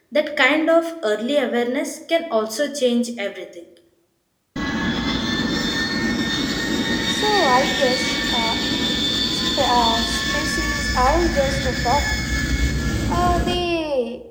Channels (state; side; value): identical; both; correlation 1.00